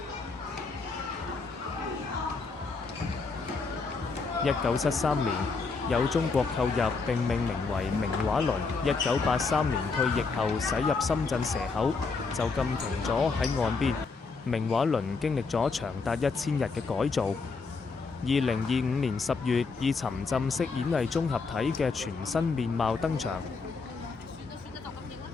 1973年，有中國購入並命名為明畫輪。1983年退役後駛入深圳蛇口，就咁停咗喺岸邊。明畫輪經歷咗長達1000日嘅改造。2025年10月，以沉浸式演藝綜合體嘅全新面貌登場。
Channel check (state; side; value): quieter; right; 4.5 dB